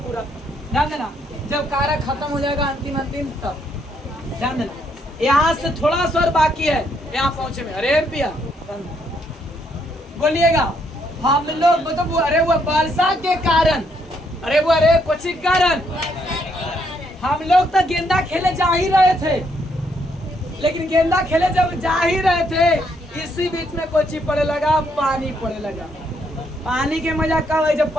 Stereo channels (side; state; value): both; normal; correlation 0.73